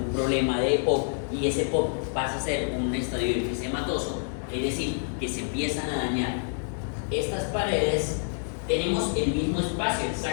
problema de EPOC y ese EPOC pasa a ser un estadio enfisematoso, es decir, que se empiezan a dañar estas paredes, tenemos el mismo espacio, el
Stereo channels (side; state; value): right; silent; digital silence